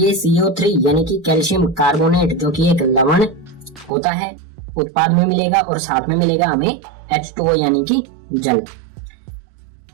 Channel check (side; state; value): left; drops out; at 3.9 s